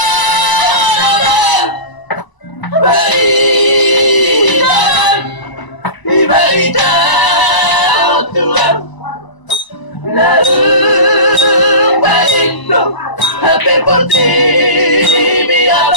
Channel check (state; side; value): late; right; 1.0 ms